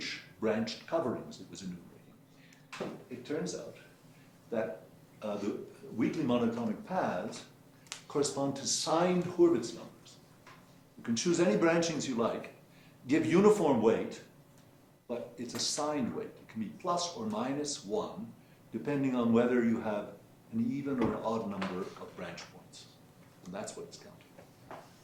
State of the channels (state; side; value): identical; both; correlation 1.00